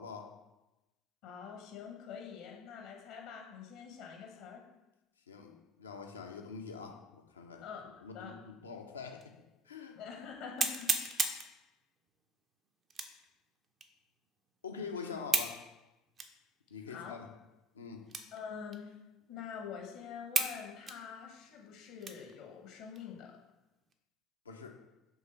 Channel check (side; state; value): both; normal; correlation 0.54